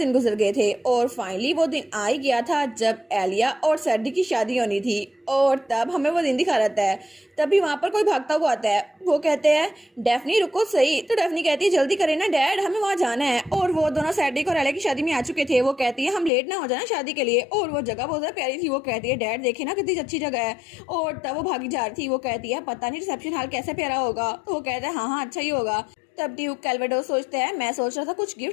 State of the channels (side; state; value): right; drops out; at 16.3 s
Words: गुजर गए थे और फाइनली वो दिन आ ही गया था जब एलिया और सैडी की शादी होनी थी। और तब हमें वो दिन दिखा रहता है। तभी वहाँ पर कोई भागता हुआ आता है। वो कहते हैं डेफनी रुको सही। तो डेफनी कहती है जल्दी करें ना डैड हमें वहाँ जाना है। और वो दोनों सैडी और एलिया की शादी में आ चुके थे। वो कहती है हम लेट ना हो जाना शादी के लिए, और वो जगह बहुत ज़्यादा प्यारी थी। वो कहती है डैड देखे ना कितनी अच्छी जगह है। और तब वो भागी जा रही थी। वो कहती है पता नहीं रिसेप्शन हॉल कैसे प्यारा होगा। तो वो कहता है हाँ हाँ अच्छा ही होगा। तब ड्यूक कैल्वेडोस सोचता है मैं सोच रहा था कुछ